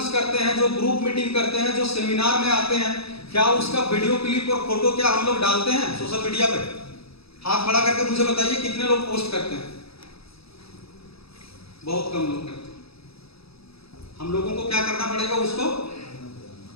करते हैं, जो ग्रुप मीटिंग करते हैं, जो सेमिनार में आते हैं, क्या उसका वीडियो क्लिप और फोटो क्या हम लोग डालते हैं सोशल मीडिया पे? हाथ खड़ा करके मुझे बताइए कितने लोग पोस्ट करते हैं? बहुत कम लोग करते हैं। हम लोगों को क्या करना पड़ेगा? उसको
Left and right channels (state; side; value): late; right; 0.77 ms